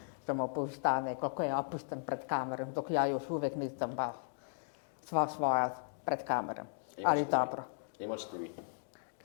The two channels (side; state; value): right; silent; digital silence